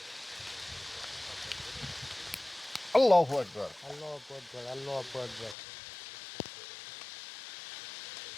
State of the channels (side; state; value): right; drops out; at 5.6 s